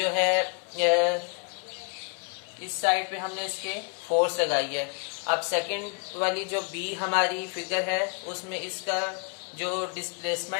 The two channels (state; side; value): quieter; right; 37.8 dB